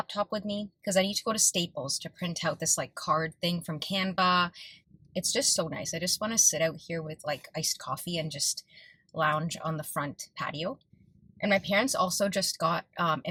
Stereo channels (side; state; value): both; identical; correlation 1.00